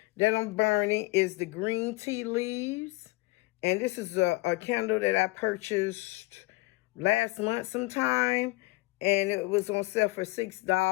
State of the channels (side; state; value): right; quieter; 22.7 dB